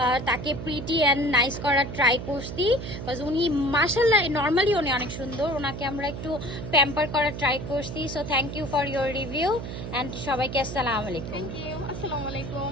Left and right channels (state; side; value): noise; right; hum, 7 dB below the sound